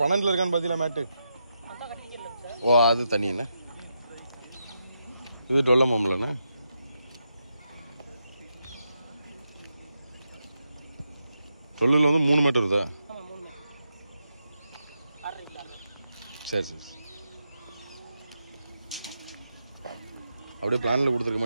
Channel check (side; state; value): both; inverted; correlation -0.84